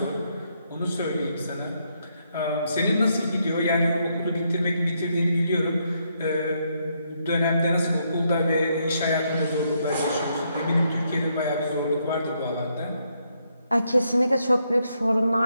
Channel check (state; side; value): inverted; both; correlation -0.77